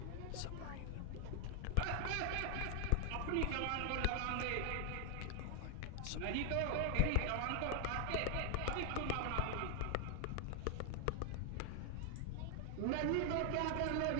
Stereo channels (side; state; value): both; different; correlation 0.00